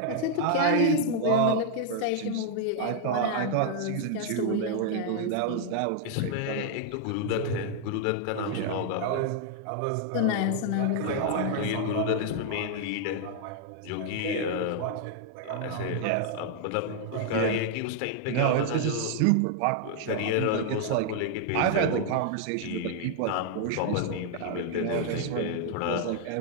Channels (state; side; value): different; both; correlation 0.00